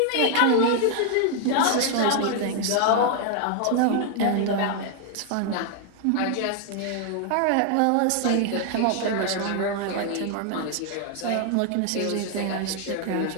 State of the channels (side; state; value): both; different; correlation 0.00